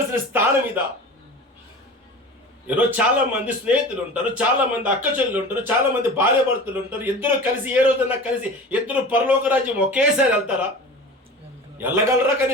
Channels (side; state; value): both; normal; correlation 0.36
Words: స్థానం ఇదా? ఈరోజు చాలా మంది స్నేహితులు ఉంటారు, చాలా మంది అక్క చెల్లెలు ఉంటారు, చాలా మంది భార్య భర్తలు ఉంటారు. ఇద్దరు కలిసి ఏ రోజన్నా కలిసి ఇద్దరు పరలోక రాజ్యం ఒకేసారి వెళ్తారా? వెళ్ళగలరా?